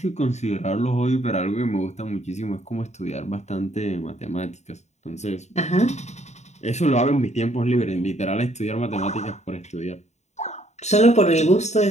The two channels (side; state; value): right; late; 0.33 ms